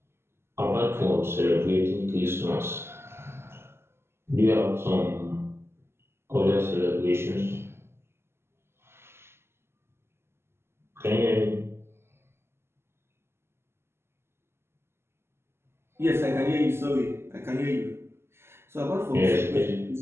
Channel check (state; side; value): late; left; 0.12 ms